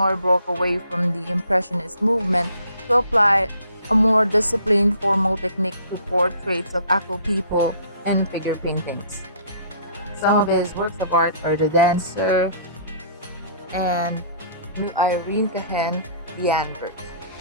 broke away from the Impressionist movement to apply a more disciplined formal technique to portraits of actual people and figure paintings. Some of his works of art are The Dancer and Irene Cahen, The Anvers.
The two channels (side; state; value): both; inverted; correlation -0.56